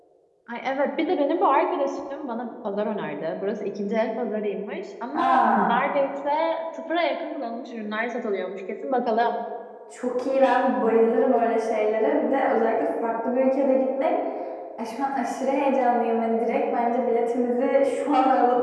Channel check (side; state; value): both; identical; correlation 1.00